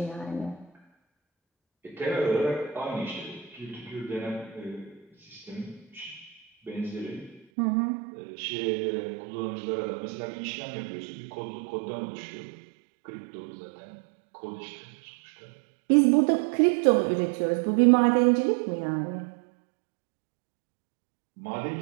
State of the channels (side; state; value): left; drops out; at 7.5 s